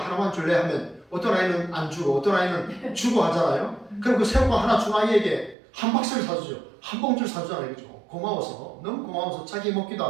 줄래 하면 어떤 아이는 안 주고 어떤 아이는 주고 하잖아요. 그럼 그 새우깡 하나 준 아이에게 한 박스를 사주죠. 한 봉지를 사주잖아요. 그죠? 고마워서, 너무 고마워서 자기 먹기도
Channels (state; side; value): drops out; left; at 5.6 s